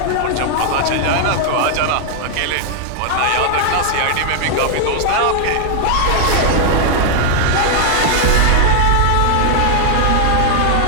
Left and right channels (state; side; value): different; both; correlation 0.00